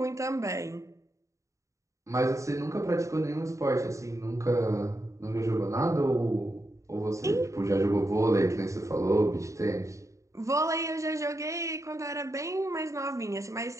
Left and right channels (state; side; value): late; left; 0.15 ms